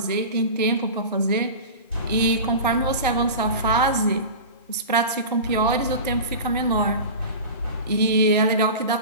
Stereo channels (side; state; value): both; inverted; correlation -0.31